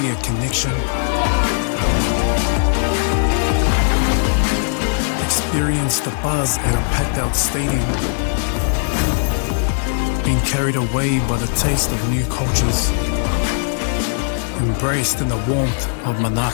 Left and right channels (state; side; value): silent; right; digital silence